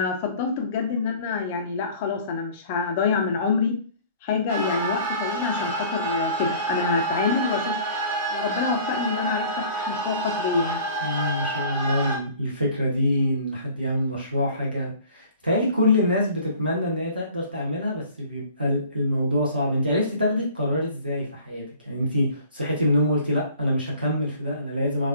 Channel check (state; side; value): inverted; both; correlation -0.49